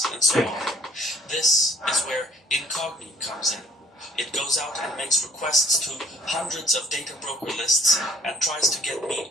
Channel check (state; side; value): normal; both; correlation 0.59